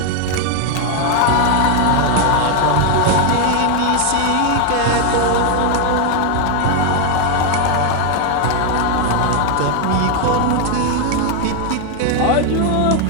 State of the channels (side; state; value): both; different; correlation 0.01